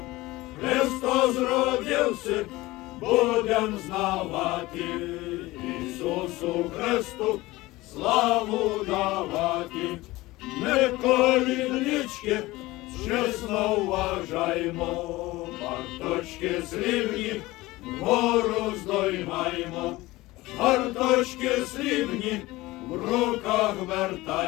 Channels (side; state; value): right; quieter; 19.4 dB